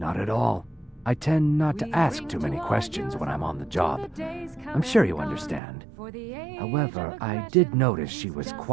at all. I tend not to ask too many questions when I'm on the job. I'm sure you understand. However, I did notice she was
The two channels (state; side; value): drops out; left; at 5.6 s